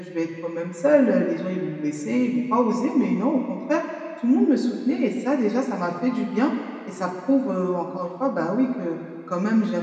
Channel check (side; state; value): both; identical; correlation 1.00